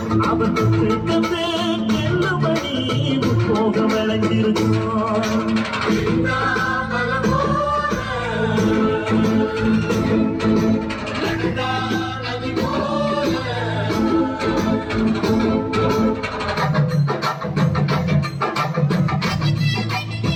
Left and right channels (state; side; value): identical; both; correlation 1.00